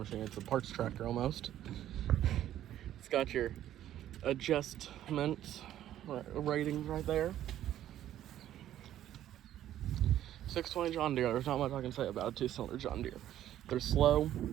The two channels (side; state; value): left; quieter; 12.0 dB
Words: It's a parts tractor almost. It's got your adjustment ratings right there. 620 John Deere. There's not much I can say about a 2-cylinder John Deere. They're slow.